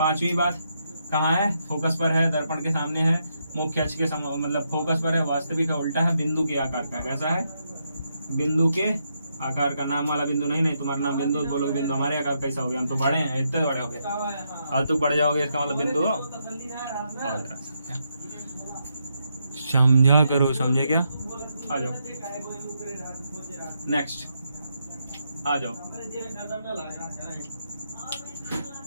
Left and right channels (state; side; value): inverted; both; correlation -0.80